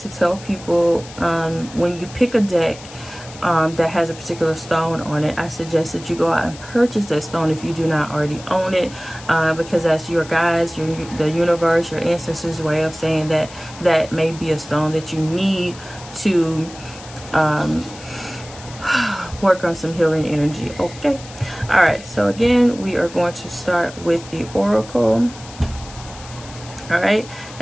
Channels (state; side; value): noise; left; hiss, 17 dB below the sound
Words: tell people, when you pick a deck that has a particular stone on it, I suggest that you go out and purchase that stone if you do not already own it, because that's your guides, the universe, your ancestors' way of saying that that may be a stone that you need to work on some healing energy. Okay, all right, so again, we are going to start with the Oracle. All right,